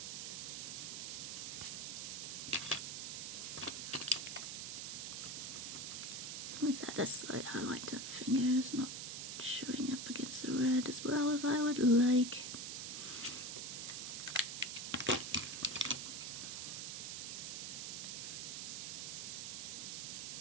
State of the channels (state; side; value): noise; right; hiss, 5 dB below the sound